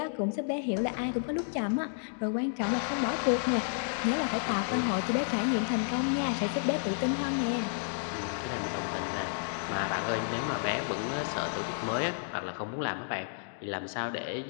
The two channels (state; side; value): silent; right; digital silence